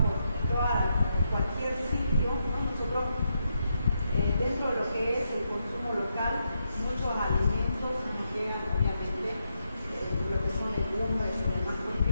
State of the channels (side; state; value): both; inverted; correlation -0.82